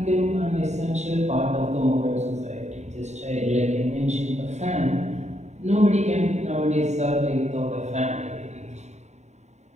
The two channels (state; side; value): late; left; 0.33 ms